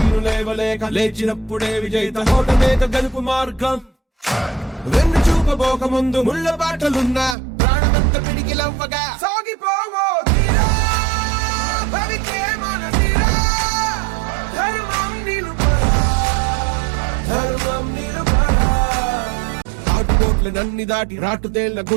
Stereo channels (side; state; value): left; drops out; at 7.4 s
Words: లేవలేక లేచినప్పుడే విజేత ఓటమేక గెలుపు మార్గం వెన్ను చూపబోక ముందు ముళ్ళ బాటలున్నా ప్రాణమంత పిడికిలవ్వగా సాగిపోవో తీరా భవికే మన తీరా ధర్మం నిలుపరా ధర్మం నిలుపరా ఆటుపోట్ల నన్ని దాటి రాటుతేళ్ల